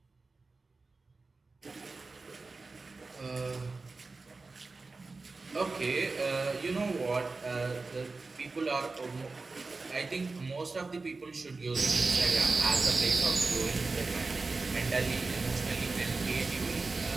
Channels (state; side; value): quieter; left; 3.8 dB